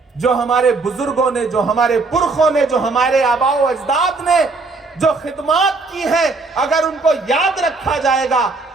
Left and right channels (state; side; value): quieter; left; 3.8 dB